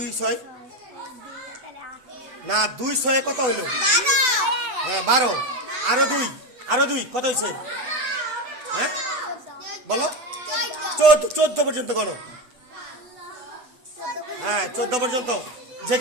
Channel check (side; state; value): left; late; 7.9 ms